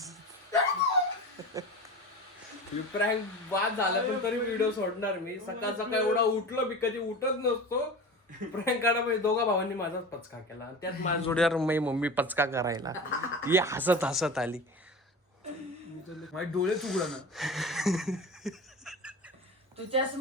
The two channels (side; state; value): both; normal; correlation 0.31